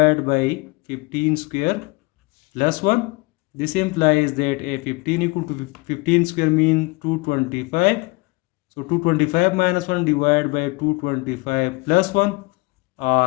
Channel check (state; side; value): quieter; right; 25.6 dB